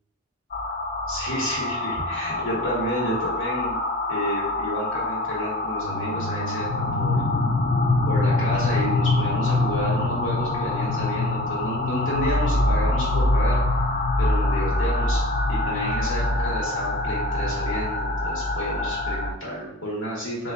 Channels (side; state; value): both; normal; correlation 0.40